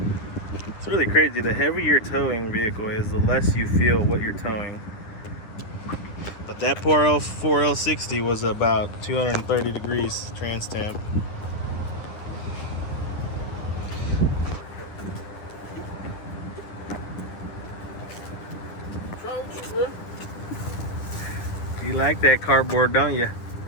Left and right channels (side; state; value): right; late; 9.9 ms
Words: It's really crazy. The heavier your towing vehicle is, the less you feel what you're towing. But that poor 4L60 was about 230 degrees trans temp. You like that cardboard, don't you?